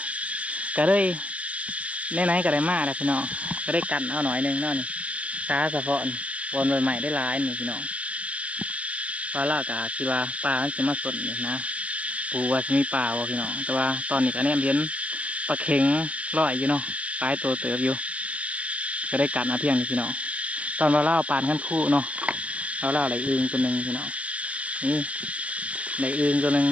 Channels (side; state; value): left; late; 0.064 ms